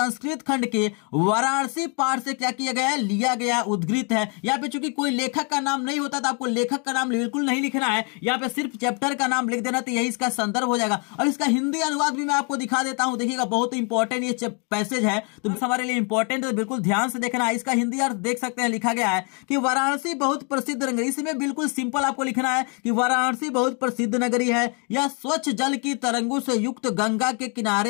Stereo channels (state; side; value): quieter; right; 36.2 dB